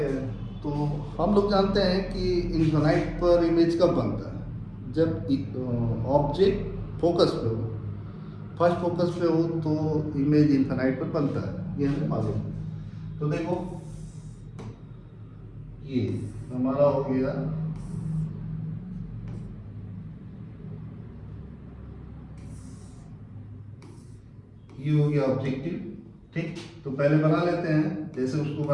हैं। तो हम लोग जानते हैं कि इन्फिनाइट पर इमेज कब बनता है, जब ऑब्जेक्ट फोकस पे हो, फर्स्ट फोकस पे हो तो इमेज इन्फिनाइट पर बनता है, ये हमें मालूम है। तो देखो ये हमारा हो गया ये हो गया ऑब्जेक्टिव, ठीक। तो पहले बना लेते हैं जैसे उसको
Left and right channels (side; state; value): both; identical; correlation 1.00